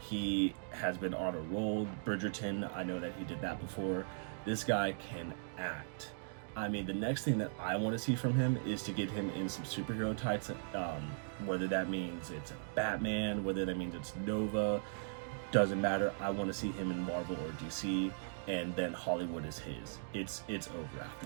has been on a roll. Bridgerton, I know that he did that before. This guy can act. I mean, the next thing that I want to see from him is to get him in some superhero tights, whether that means it's Batman, whether that means it's Nova, doesn't matter. I want to see him in Marvel or DC, and then Hollywood is his. It's over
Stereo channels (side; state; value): left; silent; digital silence